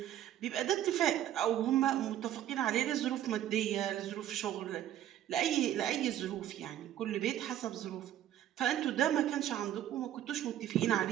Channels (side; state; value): left; quieter; 11.8 dB